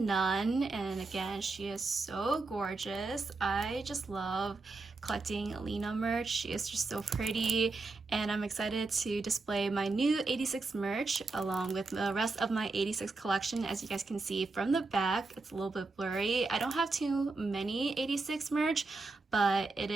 and again, she is so gorgeous. I just love collecting Lena merch. She is just so pretty, and I'm excited to display my new 86 merch along with the rest of my 86 collection. As you guys can see from the back, it's a little bit blurry. I don't have too many 86 merch, but it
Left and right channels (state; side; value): quieter; left; 3.6 dB